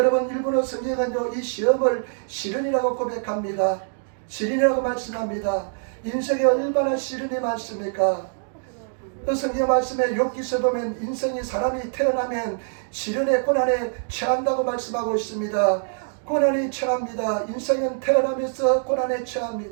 일본어 성경은요, 이 시험을 시련이라고 고백합니다. 시련이라고 말씀합니다. 인생에 얼마나 시련이 많습니까? 그 성경 말씀에 욥기서 보면 인생이 사람이 태어나면 시련의 고난에 처한다고 말씀하고 있습니다. 고난이 처합니다. 인생은 태어나면서 고난에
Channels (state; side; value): silent; left; digital silence